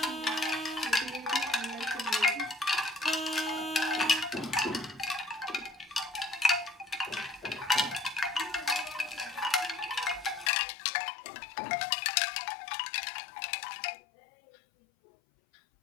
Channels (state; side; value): drops out; right; at 10.5 s